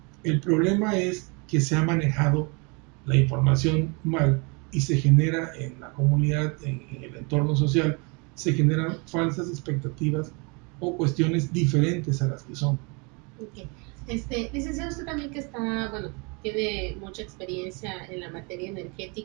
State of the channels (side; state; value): left; quieter; 31.5 dB